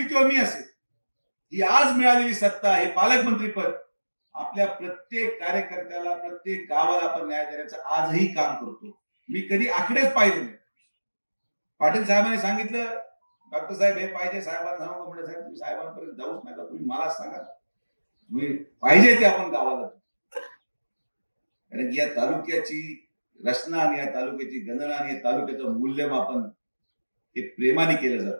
किंवा मी असेल, ही आज मिळालेली सत्ता हे पालकमंत्री पद आपल्या प्रत्येक कार्यकर्त्याला, प्रत्येक गावाला आपण न्याय देण्याचं आजही काम करतो. मी कधी आकडेच पाहिले नाही. पाटील साहेबांनी सांगितलं, डॉक्टर साहेब हे पाहिजे, साहेबांना सांगू म्हणजे साहेब तुम्ही साहेबांपर्यंत जाऊच नका, तुम्ही मला सांगा, तुम्ही पाहिजे ते आपण गावाला. कारण या तालुक्याची रचना आणि या तालुक्याची गणना आणि या तालुक्याचं मूल्यमापन हे प्रेमाने केलं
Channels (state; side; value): inverted; both; correlation -1.00